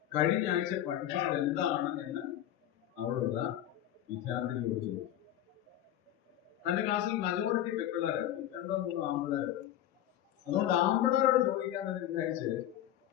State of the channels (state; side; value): quieter; right; 12.1 dB